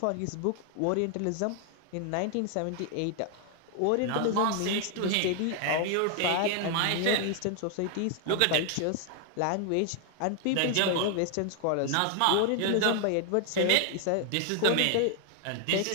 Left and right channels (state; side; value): different; both; correlation 0.00